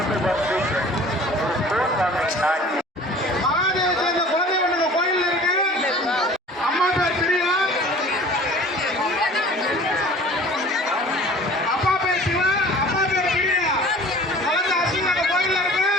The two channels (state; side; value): normal; both; correlation 0.45